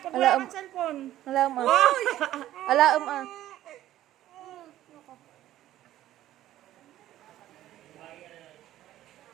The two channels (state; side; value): quieter; left; 13.6 dB